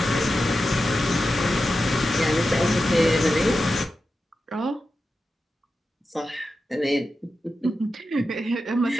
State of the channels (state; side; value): normal; both; correlation 0.91